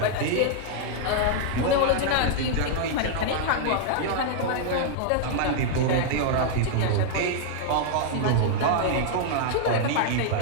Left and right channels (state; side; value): different; both; correlation -0.01